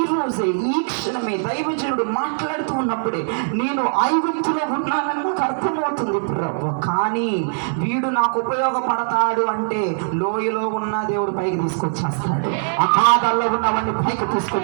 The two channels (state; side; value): silent; left; digital silence